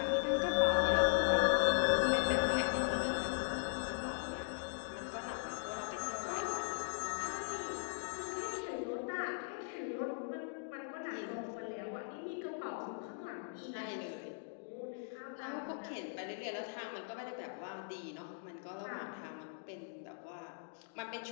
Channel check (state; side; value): silent; right; digital silence